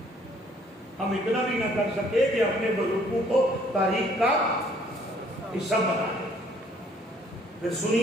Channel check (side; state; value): both; normal; correlation 0.61